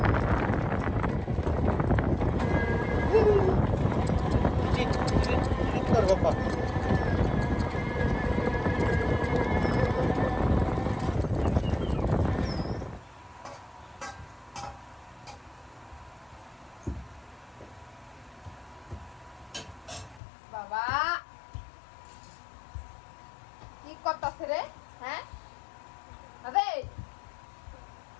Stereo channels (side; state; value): right; drops out; at 20.2 s